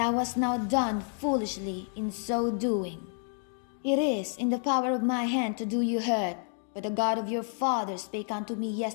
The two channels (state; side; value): silent; right; 58 dB below the other